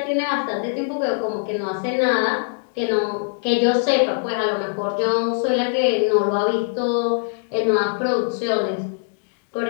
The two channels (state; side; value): silent; right; digital silence